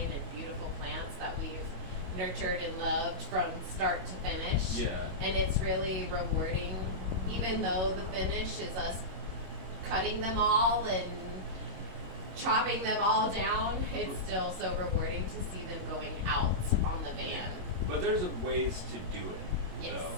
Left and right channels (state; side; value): late; left; 22 ms